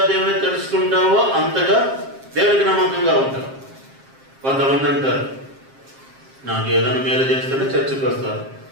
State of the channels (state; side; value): late; left; 7.5 ms